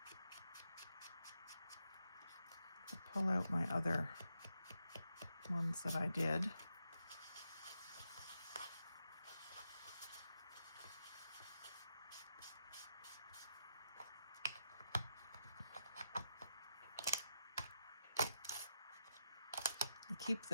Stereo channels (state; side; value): inverted; both; correlation -0.82